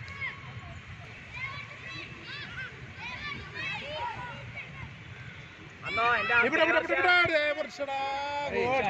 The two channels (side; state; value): both; identical; correlation 1.00